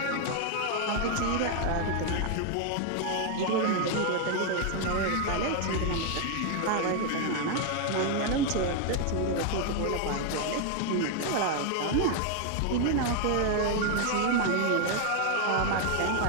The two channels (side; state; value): both; different; correlation 0.00